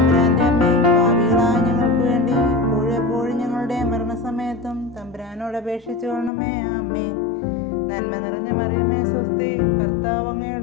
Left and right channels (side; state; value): right; drops out; at 6.3 s